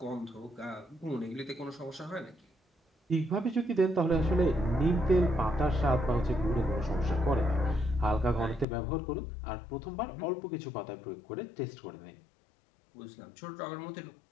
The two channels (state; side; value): drops out; right; at 8.7 s